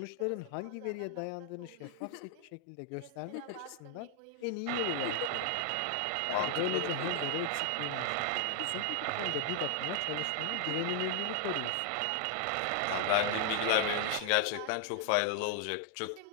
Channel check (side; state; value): both; different; correlation 0.00